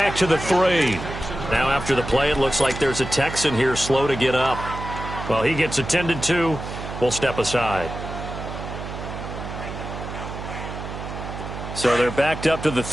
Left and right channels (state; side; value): noise; right; hum, 8 dB below the sound